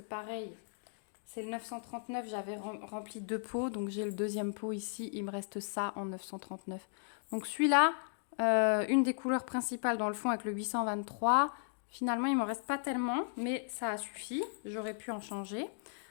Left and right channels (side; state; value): right; silent; digital silence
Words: pareil, C'est le 939, j'avais rempli 2 pots, donc j'ai le deuxième pot ici, il me reste ça en 939. Donc celui-là, une des couleurs principales dans le fond avec le 823, finalement il m'en reste pas tellement, mais ça a suffi, j'aurais pu en changer.